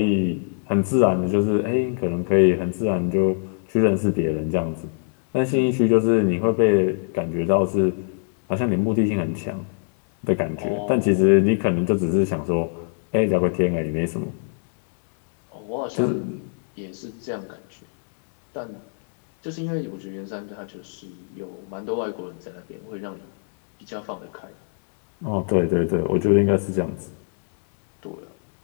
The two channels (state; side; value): silent; right; digital silence